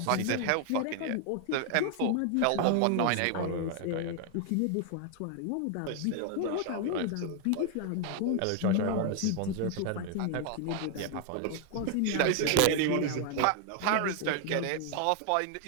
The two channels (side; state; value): both; different; correlation 0.00